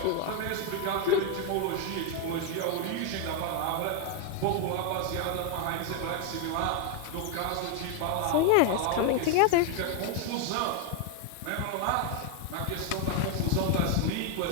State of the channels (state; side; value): different; both; correlation 0.00